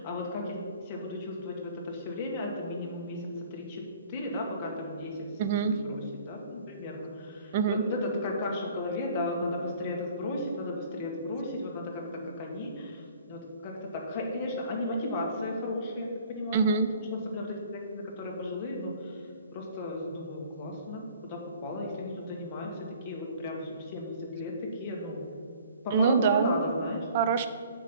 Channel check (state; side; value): inverted; both; correlation -0.52